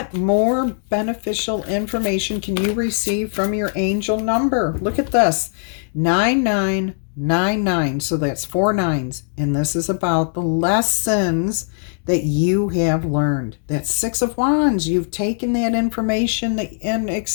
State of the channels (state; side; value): silent; right; digital silence